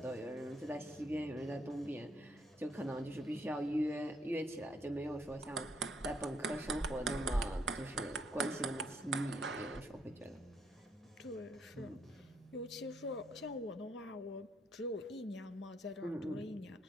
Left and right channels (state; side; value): normal; both; correlation 0.72